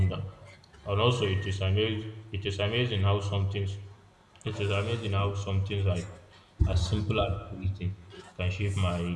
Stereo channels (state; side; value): identical; both; correlation 1.00